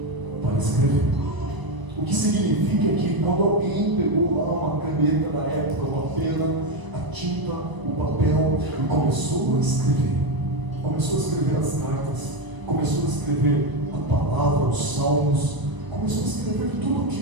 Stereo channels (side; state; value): left; late; 1.0 ms